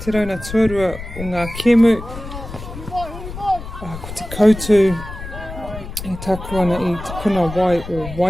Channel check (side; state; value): left; noise; rumble, 11 dB below the sound